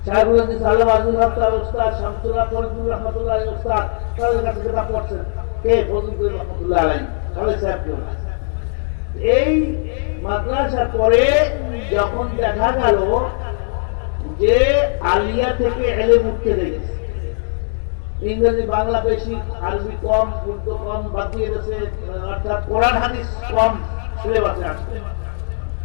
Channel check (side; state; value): right; silent; digital silence